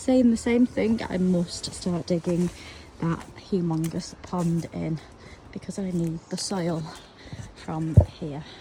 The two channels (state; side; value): identical; both; correlation 1.00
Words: the same thing. I must start digging that humongous pond in because I need the soil from here.